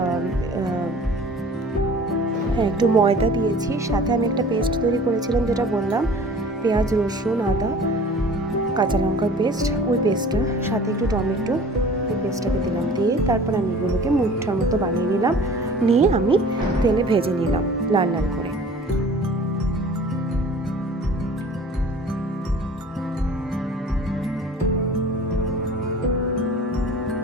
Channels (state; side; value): normal; both; correlation 0.45